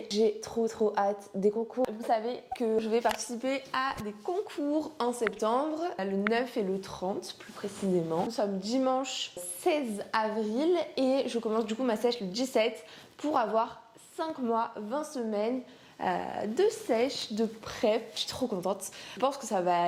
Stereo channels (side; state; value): both; identical; correlation 1.00